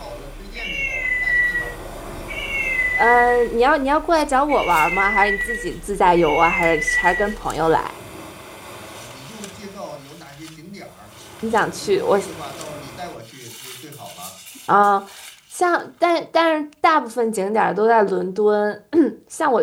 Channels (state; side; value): identical; both; correlation 1.00